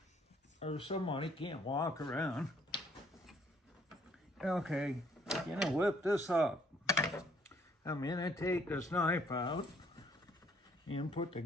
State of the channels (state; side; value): normal; both; correlation 0.64